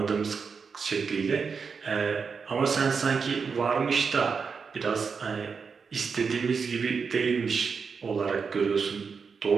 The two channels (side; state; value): left; quieter; 5.5 dB